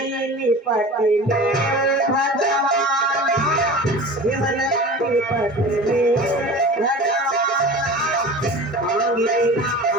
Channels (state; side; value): normal; both; correlation 0.36